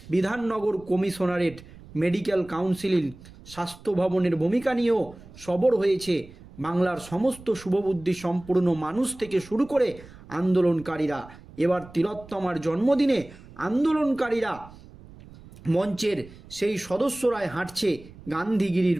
Bidhannagar commissionerate, medical council, স্বাস্থ্য ভবনের ভূমিকা নিয়েও সরব হয়েছে বাংলার সমস্ত শুভবুদ্ধি সম্পূর্ণ মানুষ থেকে শুরু করে আন্দোলনকারীরা। এবার তিলোত্তমার জন্মদিনে আন্দোলনকারীরা মঞ্চের সেই সদস্যরাই হাঁটছে গান্ধীগিরির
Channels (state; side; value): noise; right; rumble, 20 dB below the sound